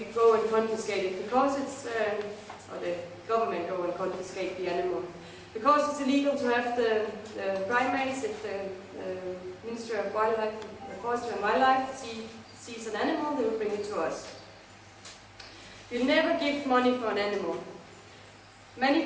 go and confiscate it because it's, or the government go and confiscate the animal. Because it's illegal to have the primates, if the Ministry of Wildlife, Forestry and Wildlife sees an animal, they will bring it to us. We never give money for an animal. Many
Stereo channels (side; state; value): both; identical; correlation 1.00